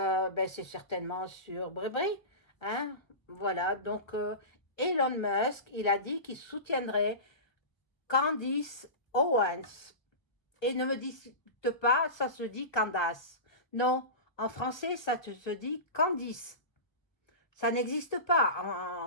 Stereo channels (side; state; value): right; late; 1.2 ms